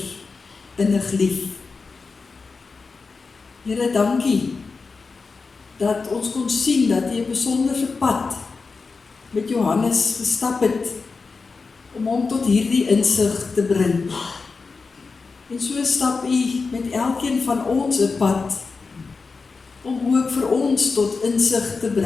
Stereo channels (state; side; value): quieter; right; 4.5 dB